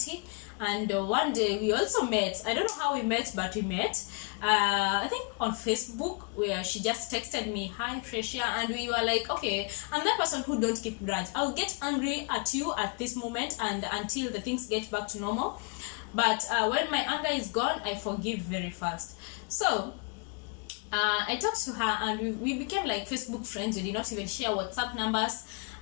And one day we also met. I don't know how we met, but we met. I think on Facebook, where she just texted me, "Hi Freshia," and we were like, okay, I'm that person who don't keep grudge. I'll get angry at you at this moment, and until the things get back to normal. But when my anger is gone, I forgive very fast. So I talked to her, and we became like Facebook friends. We did not even share WhatsApp numbers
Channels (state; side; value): quieter; right; 34.2 dB